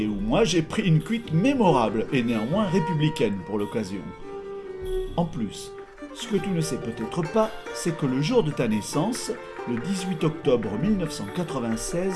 où moi j'ai pris une cuite mémorable et néanmoins républicaine pour l'occasion. En plus, ce que tu ne sais peut-être pas, c'est que le jour de ta naissance, le 18 octobre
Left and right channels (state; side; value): identical; both; correlation 1.00